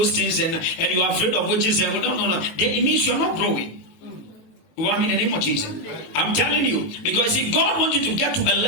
things, and you are afraid of witches, and no, it means you are not growing. You want me in the name of Jesus? I'm telling you, because see, God wants you to get to a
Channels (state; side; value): late; right; 19 ms